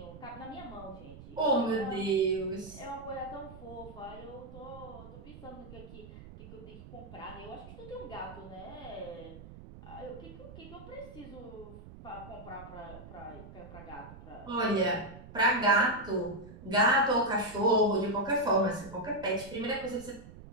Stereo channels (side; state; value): right; noise; rumble, 16 dB below the sound